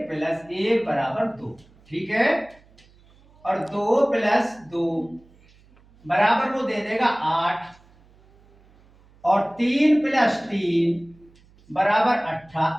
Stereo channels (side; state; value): right; noise; hum, 29 dB below the sound